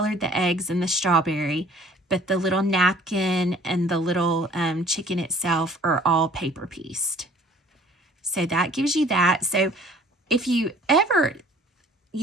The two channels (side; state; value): both; normal; correlation 0.54